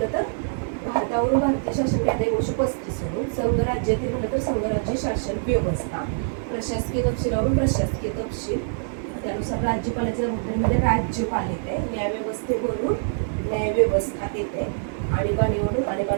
तर भारतावरून भारतीय शासन कायदा 1935 वरून संघ राज्यातील म्हणलं तर संघराज्य शासन व्यवस्था, प्रशासकीय तपशिलावरून प्रशासकीय तपशील, त्यानुसार राज्यपालाच्या जबाबदारीमध्ये राज्यपाल येते, न्यायव्यवस्थेवरून न्यायव्यवस्था येते, आणीबाणीवरून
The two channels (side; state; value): left; silent; digital silence